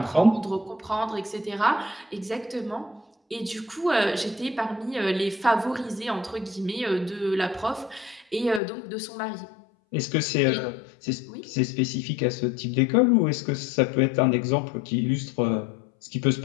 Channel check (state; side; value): drops out; right; at 8.6 s